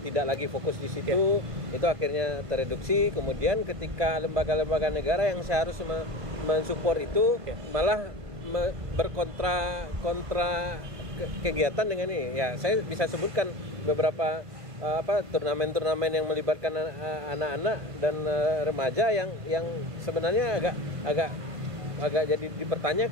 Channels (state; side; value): late; left; 1.5 ms